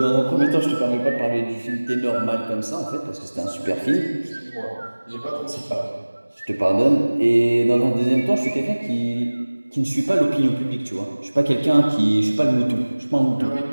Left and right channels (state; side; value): inverted; both; correlation -1.00